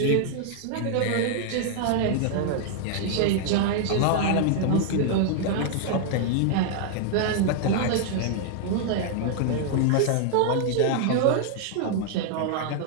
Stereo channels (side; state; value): both; different; correlation -0.01